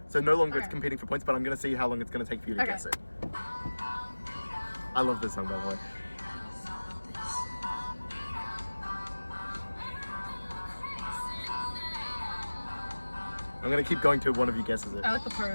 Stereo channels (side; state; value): both; inverted; correlation -1.00